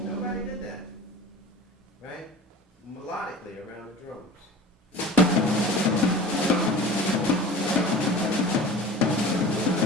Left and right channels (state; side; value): normal; both; correlation 0.39